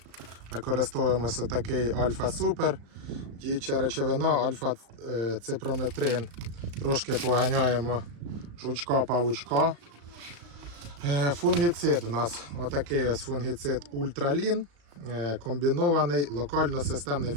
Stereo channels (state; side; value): late; left; 35 ms